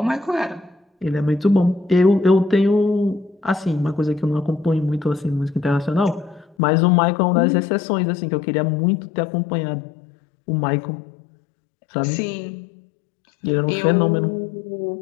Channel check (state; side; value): drops out; right; at 6.6 s